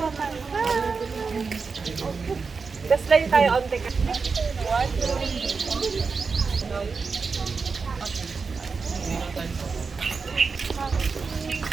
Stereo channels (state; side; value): quieter; left; 4.9 dB